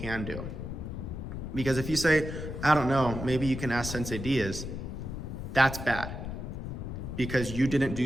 do. Because if you say, I don't know, maybe you can ask Sensei Diaz, that's bad. Because you didn't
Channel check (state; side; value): noise; left; rumble, 6 dB below the sound